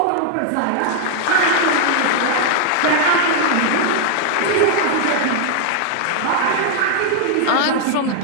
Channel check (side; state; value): both; different; correlation 0.00